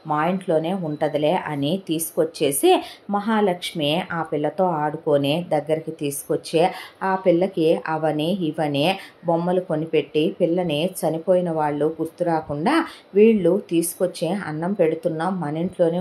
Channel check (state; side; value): identical; both; correlation 1.00